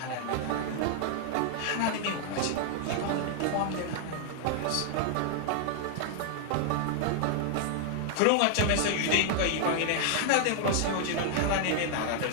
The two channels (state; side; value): different; both; correlation 0.00